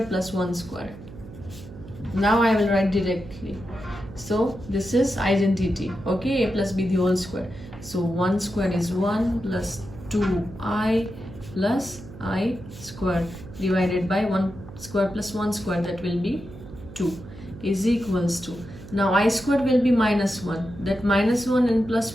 plus 1 square. Now I will write directly. So this is identity. Okay, a plus b the whole square. So 1 square is 1 plus 2I plus I square divided by 1 square plus 1 square, that will be 2 is equals to, now I squared will be minus 1, that minus 1 and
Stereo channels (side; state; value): right; noise; hum, 15 dB below the sound